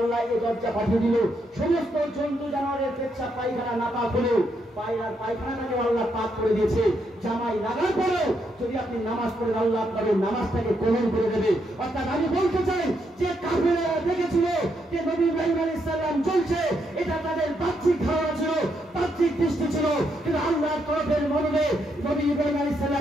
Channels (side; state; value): both; normal; correlation 0.78